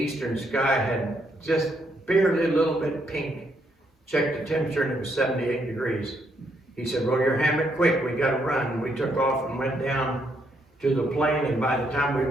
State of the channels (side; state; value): both; normal; correlation 0.75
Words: sky had just barely a little bit pink. Checked the temperature and it was 78 degrees. He said, "Roll your hammock quick, we gotta run." And we took off and went down to the plane, and by the time we